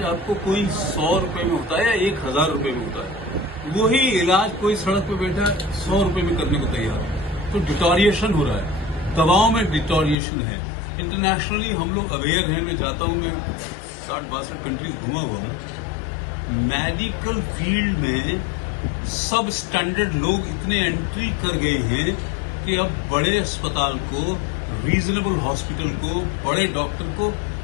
आपको कोई 100 रुपए में होता है या 1000 रुपए में होता है, वही इलाज कोई सड़क पे बैठा 100 रुपए में करने को तैयार है। तो डिटोरिएशन हो रहा है, दवाओं में डिटोरिएशन है। इंटरनेशनली हम लोग अवेयर हैं। मैं जाता हूं, मैं 60-62 कंट्रीज घूमा हुआ हूं। मेडिकल फील्ड में सब स्टैंडर्ड लोग इतने एंट्री कर गए हैं कि अब बड़े अस्पताल को, रीजनेबल हॉस्पिटल को, बड़े डॉक्टर को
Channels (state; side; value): drops out; right; at 10.2 s